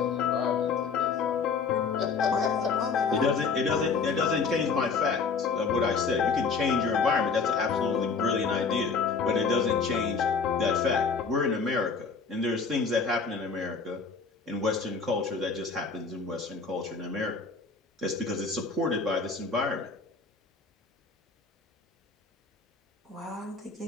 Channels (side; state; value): right; quieter; 5.0 dB